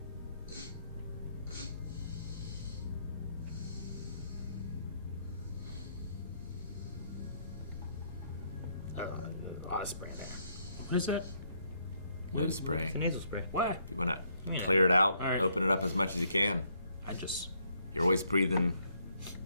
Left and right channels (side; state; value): both; inverted; correlation -0.71